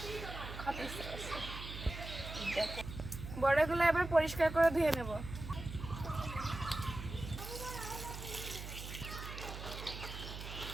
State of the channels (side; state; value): right; noise; hum, 9 dB below the sound